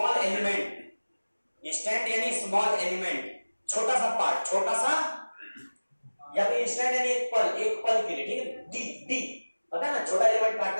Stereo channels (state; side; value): inverted; both; correlation -1.00